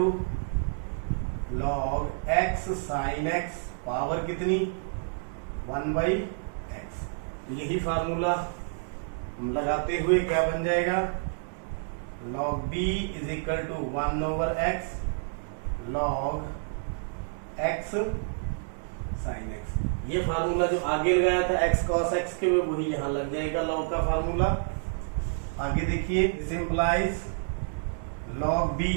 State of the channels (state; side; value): silent; left; 57 dB below the other